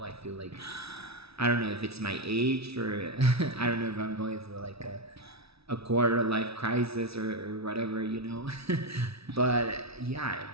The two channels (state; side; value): late; left; 0.77 ms